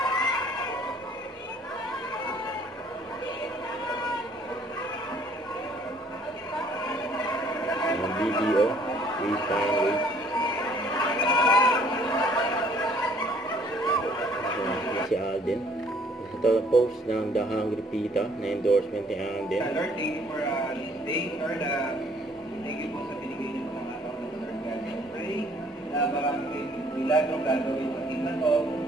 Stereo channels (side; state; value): both; normal; correlation 0.60